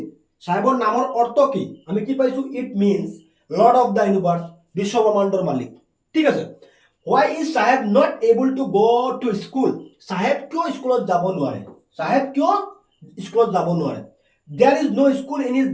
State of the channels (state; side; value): identical; both; correlation 1.00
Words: সাহেবৰ নামৰ অৰ্থ কি আমি কি পাইছো it means lord of the universe বিশ্বব্ৰহ্মাণ্ডৰ মালিক ঠিক আছে why is সাহেব not able to go to school সাহেব কিয় স্কুলত যাব নোৱাৰে সাহেব কিয় স্কুলত যাব নোৱাৰে there is no school in his